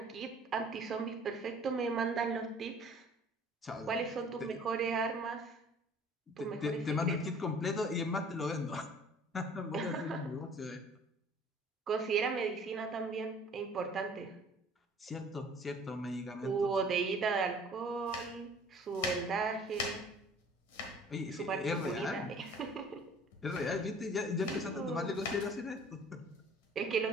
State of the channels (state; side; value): normal; both; correlation 0.51